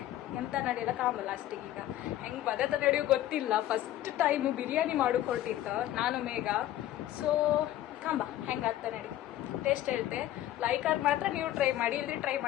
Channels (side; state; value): right; quieter; 13.5 dB